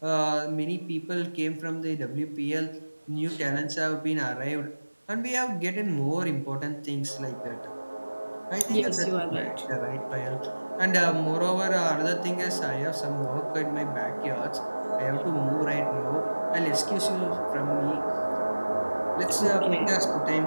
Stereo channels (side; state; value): both; inverted; correlation -1.00